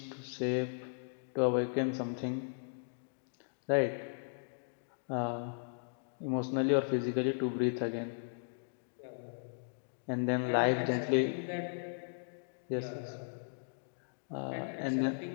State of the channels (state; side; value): silent; right; digital silence